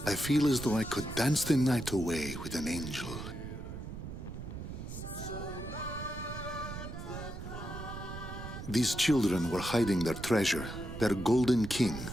I feel as though I could dance the night away with an angel. These children were hiding their treasure, their golden king,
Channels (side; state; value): right; noise; rumble, 9 dB below the sound